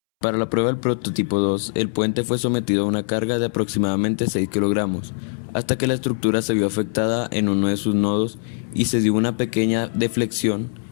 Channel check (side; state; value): right; silent; 64 dB below the other